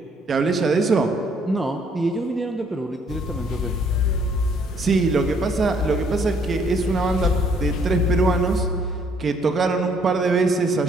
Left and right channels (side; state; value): both; normal; correlation 0.65